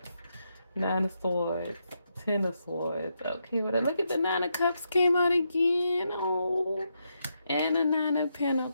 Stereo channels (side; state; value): both; inverted; correlation -0.82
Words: 9 of Swords. 10 of Swords. Okay, well, look at the 9 of Cups came out again. Oh, and a 9 of